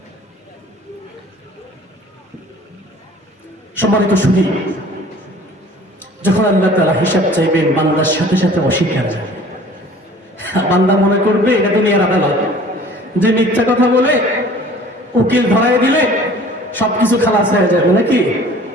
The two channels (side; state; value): both; normal; correlation 0.48